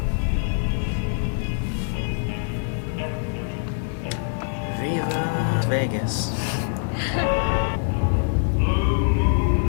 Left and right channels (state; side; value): silent; right; digital silence